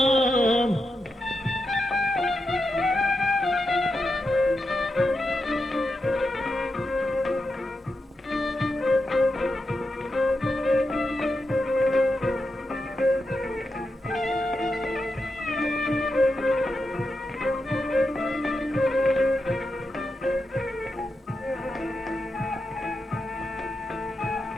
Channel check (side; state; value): both; normal; correlation 0.87